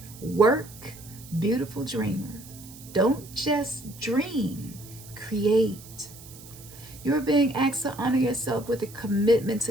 Work, beautiful dreamer. Don't just dream, create. You are being asked to honor yourself with a commitment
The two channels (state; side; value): noise; right; hiss, 18 dB below the sound